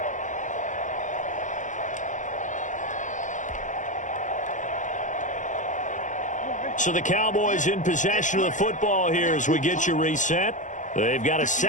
So the Cowboys in possession of the football here as we get you reset. They've got a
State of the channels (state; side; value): late; right; 0.37 ms